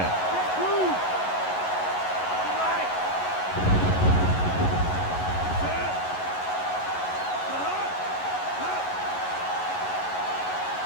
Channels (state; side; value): late; right; 11 ms